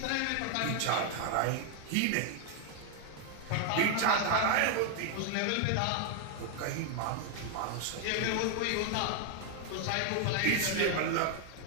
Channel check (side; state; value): both; different; correlation 0.00